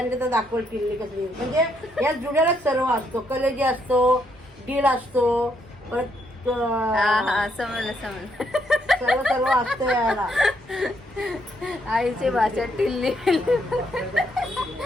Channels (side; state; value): both; normal; correlation 0.74